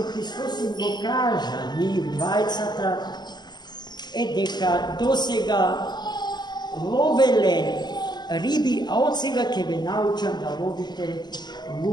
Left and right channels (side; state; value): right; late; 0.21 ms